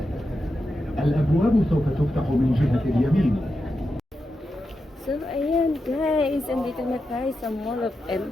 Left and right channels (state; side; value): normal; both; correlation 0.88